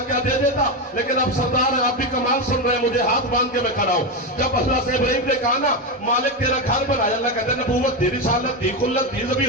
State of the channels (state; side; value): normal; both; correlation 0.12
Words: क्या दे देता, लेकिन अब सरदार है, आप भी कमाल सुन रहे हैं, मुझे हाथ बांध के मैं खड़ा हूँ। जब अल्लाह से इब्राहिम ने कहा ना मालिक तेरा घर बनाया, अल्लाह कहते नबूवत दी, रिसालत दी, खुल्लत दी,